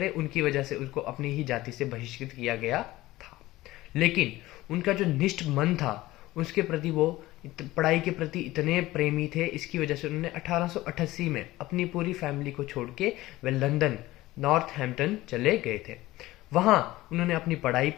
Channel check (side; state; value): right; quieter; 17.6 dB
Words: उनकी वजह से उसको अपनी ही जाति से बहिष्कृत किया गया था। लेकिन उनका जो निष्ठ मन था, उसके प्रति वो पढ़ाई के प्रति इतने प्रेमी थे, इसकी वजह से उन्होंने 1888 में अपनी पूरी फैमिली को छोड़ के वह लंदन नॉर्थहैम्पटन चले गए थे। वहाँ उन्होंने अपनी पढ़ाई